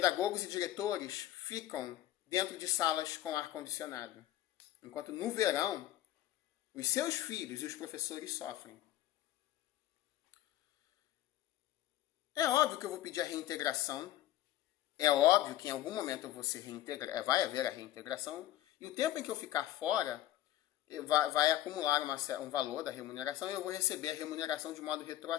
e diretores ficam dentro de salas com ar-condicionado. Enquanto no verão, os seus filhos e os professores sofrem. É óbvio que eu vou pedir a reintegração. É óbvio que em algum momento eu vou ser reintegrado, vai haver a reintegração. E o tempo em que eu ficar fora, vai acumular um valor da remuneração e eu vou receber a remuneração de modo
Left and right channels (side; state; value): right; quieter; 13.8 dB